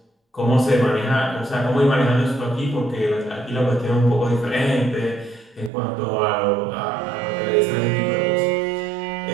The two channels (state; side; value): drops out; left; at 5.7 s